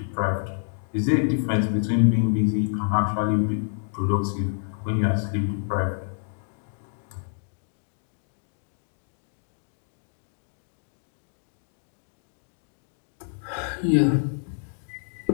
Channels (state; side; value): silent; right; digital silence